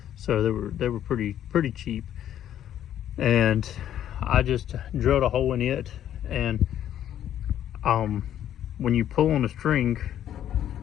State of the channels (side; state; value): right; quieter; 10.9 dB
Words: So they were pretty cheap. And I just drilled a hole in it, and when you pull on the string,